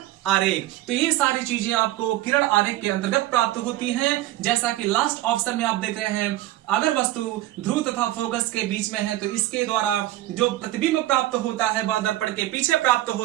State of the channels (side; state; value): left; quieter; 15.5 dB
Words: आरेख। तो ये सारी चीजें आपको किरण आरेख के अंतर्गत प्राप्त होती हैं। जैसा कि लास्ट ऑप्शन में आप देख रहे हैं, अगर वस्तु ध्रुव तथा फोकस के बीच में है तो इसके द्वारा जो प्रतिबिंब प्राप्त होता है वह दर्पण के पीछे प्राप्त